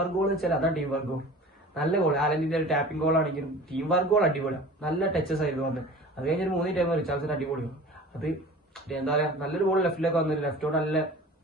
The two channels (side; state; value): both; normal; correlation 0.41